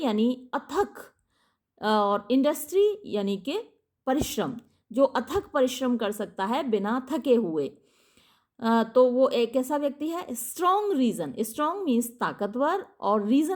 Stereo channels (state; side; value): identical; both; correlation 1.00